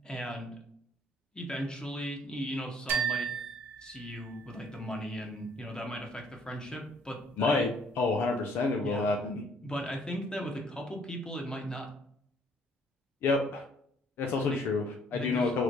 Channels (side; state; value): both; normal; correlation 0.62